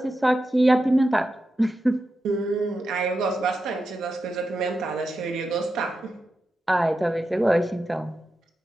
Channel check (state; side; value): normal; both; correlation 0.89